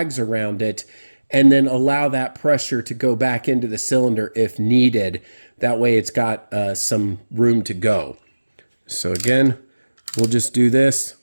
around it, and then allow that pressure to go back into the cylinder if needed. That way it's got some room to go. So again, we'll just do this,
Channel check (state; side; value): inverted; both; correlation -1.00